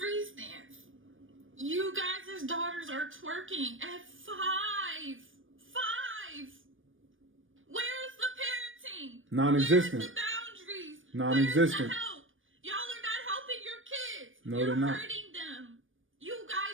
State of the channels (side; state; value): left; late; 0.57 ms